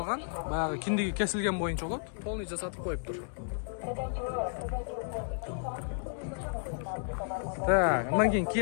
Баягы киндиги кесилген боюнча болот. Полный жасатып коюптур. Так, андан кийин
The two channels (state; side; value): silent; right; digital silence